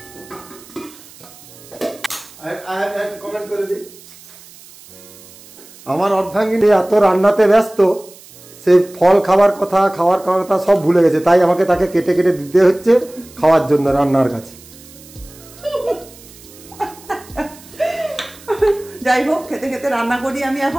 কমেন্ট করে দিই, আমার অর্ধাঙ্গিনী এত রান্নাতে ব্যস্ত, সে ফল খাওয়ার কথা সব ভুলে গেছে। তাই আমাকে তাকে কেটে কেটে দিতে হচ্ছে খাওয়ার জন্য রান্নার কাছে। যাই হোক, খেতে খেতে রান্না করি আমি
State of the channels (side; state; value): right; noise; hiss, 22 dB below the sound